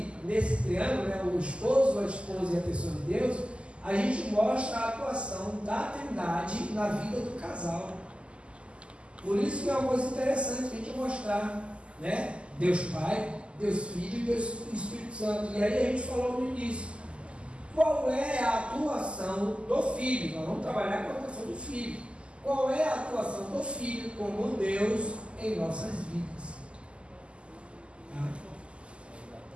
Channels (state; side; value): late; left; 0.053 ms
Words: nesse triângulo, né, o esposo, a esposa e a pessoa de Deus, a gente mostra a atuação da Trindade na vida do casal. Por isso que é uma coisa interessante a gente mostrar, né? Deus Pai, Deus Filho e Deus Espírito Santo. E aí a gente falou no início, qual é a atuação do Filho? Nós vamos trabalhar com a atuação do Filho. Qual é a atuação do Filho como Deus em nossas vidas?